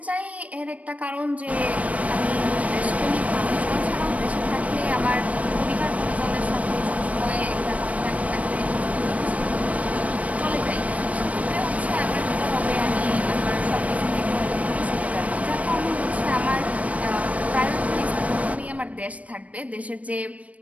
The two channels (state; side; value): late; left; 0.067 ms